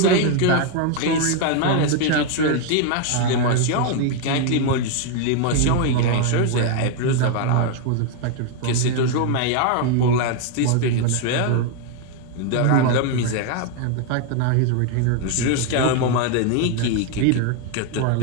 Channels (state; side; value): different; both; correlation 0.01